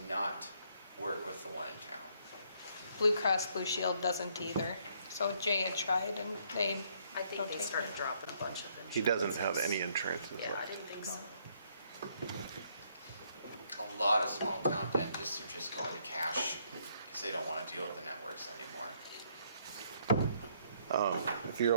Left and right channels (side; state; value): both; inverted; correlation -0.69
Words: not work with the one in town. Blue Cross Blue Shield doesn't either. So Jay had tried and they I think don't they take started it. dropping a bunch of insurance. He doesn't have any insurance. is Yeah, what- I didn't think so. A lot of small town dentists are just going to cash because they don't want to deal with the networks anymore. If you're